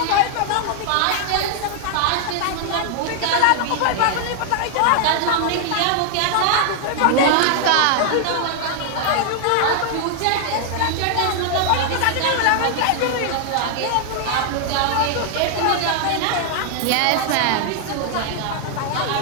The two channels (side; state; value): both; different; correlation 0.00